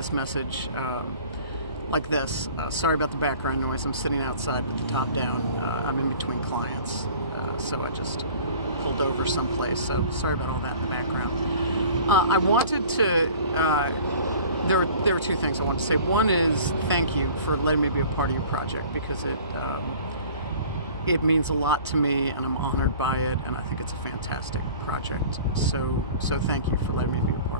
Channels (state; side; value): inverted; both; correlation -0.46